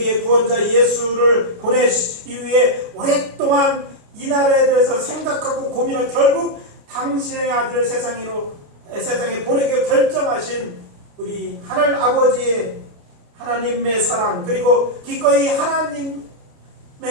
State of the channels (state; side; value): late; left; 29 ms